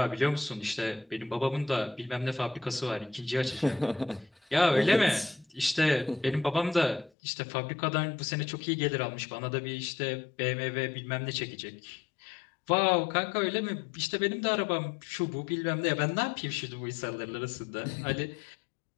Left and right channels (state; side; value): drops out; right; at 7.1 s